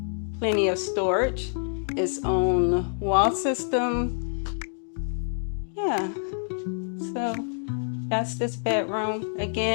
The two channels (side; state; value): right; silent; digital silence